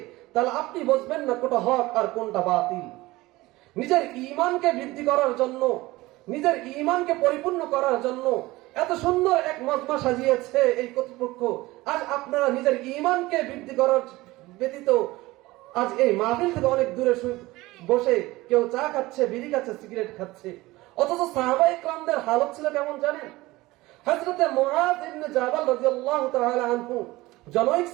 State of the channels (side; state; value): left; quieter; 19.6 dB